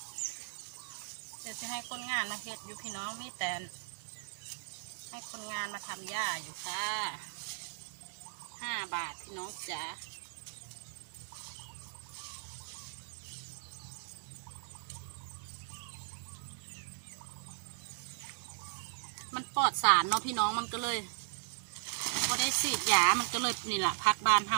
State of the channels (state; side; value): silent; left; 53 dB below the other